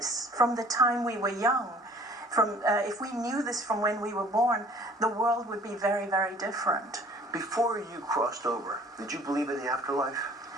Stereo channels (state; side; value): normal; both; correlation 0.52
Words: from the time we were young, if we knew this from when we were born, the world would be very, very different. Before you crossed over, did you believe in the afterlife?